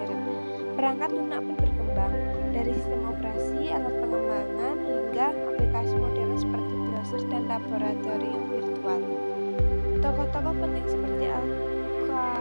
Perangkat lunak pun berkembang dari sistem operasi, alat pengembangan hingga aplikasi modern seperti browser dan laboratorium virtual. Tokoh-tokoh penting seperti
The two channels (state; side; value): inverted; both; correlation -1.00